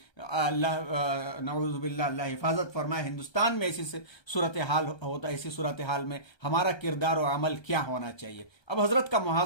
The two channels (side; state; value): right; late; 1.3 ms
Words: अल्लाह नऊज़ुबिल्लाह, अल्लाह हिफाजत फरमाए, हिंदुस्तान में ऐसी सूरत हाल होता है, इसी सूरत हाल में हमारा किरदार और अमल क्या होना चाहिए। अब हजरत का